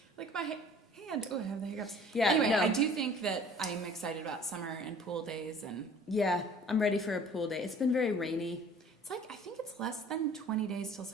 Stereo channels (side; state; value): both; normal; correlation 0.50